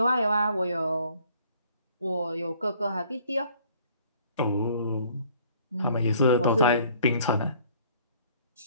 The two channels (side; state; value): both; inverted; correlation -0.58